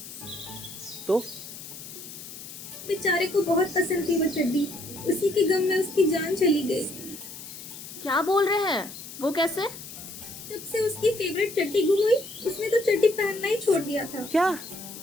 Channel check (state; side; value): noise; left; hiss, 13 dB below the sound